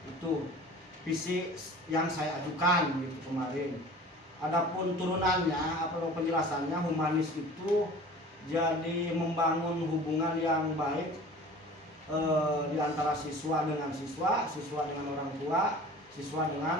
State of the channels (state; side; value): normal; both; correlation 0.43